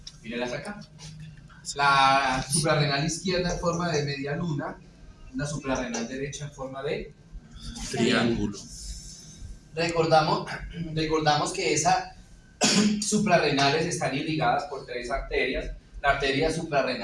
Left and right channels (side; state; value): both; identical; correlation 1.00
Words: Mírenlas acá. La suprarrenal izquierda en forma de media luna, la suprarrenal derecha en forma de Triángulo. Recordamos que esas suprarrenales están irrigadas por 3 arterias. La arteria